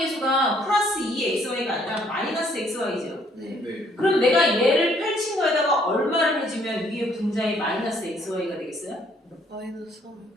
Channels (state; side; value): normal; both; correlation 0.65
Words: 플러스 2xy가 아니라 마이너스 xy죠. 네. 그럼 내가 얘를 펼친 거에다가 얼마를 해주면 위에 분자에 마이너스 xy가 되겠어요? 마이너스 3.